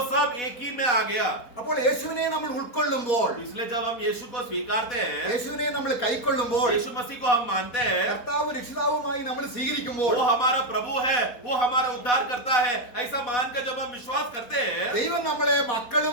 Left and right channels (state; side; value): late; right; 4.3 ms